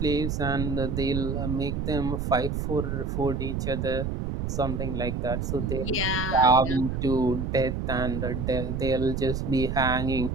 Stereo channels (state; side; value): noise; right; rumble, 2 dB below the sound